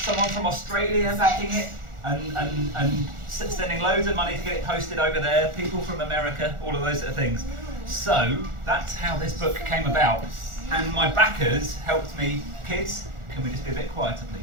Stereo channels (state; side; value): late; left; 1.4 ms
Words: from Australia backing it. and sending loads of money to get it posted over there. People from America, all of those sort of things. So that's how this book came about. And my backers helped me. Kids, can we just be a bit quieter,